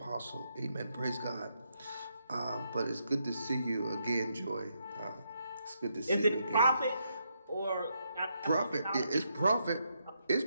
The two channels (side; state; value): both; inverted; correlation -0.79